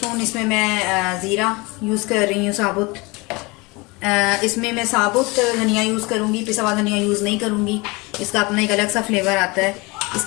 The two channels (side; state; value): right; quieter; 25.6 dB